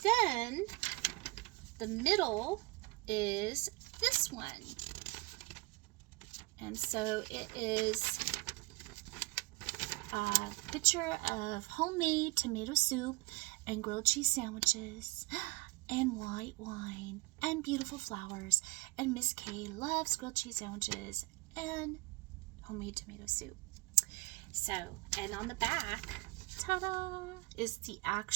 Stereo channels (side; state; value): left; quieter; 26.2 dB